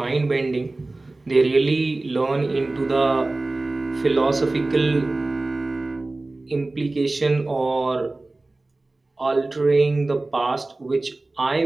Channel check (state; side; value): quieter; left; 3.0 dB